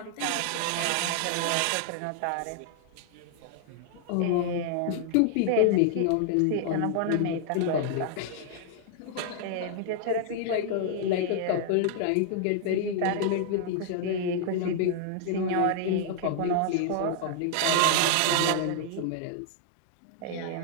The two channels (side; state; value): both; different; correlation -0.01